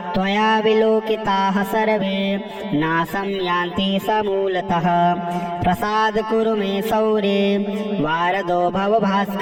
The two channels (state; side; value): identical; both; correlation 1.00